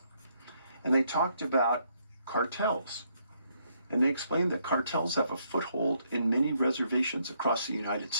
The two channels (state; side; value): inverted; both; correlation -0.73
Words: And they talked about cartels. And they explained that cartels have a foothold in many reservations across the United